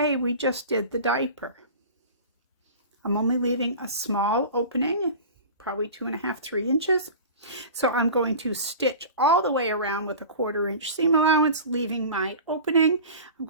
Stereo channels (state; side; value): inverted; both; correlation -0.36